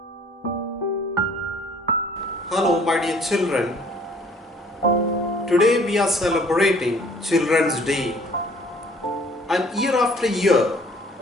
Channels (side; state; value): both; normal; correlation 0.56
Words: my dear children. Today we are celebrating Children's Day. And year after year,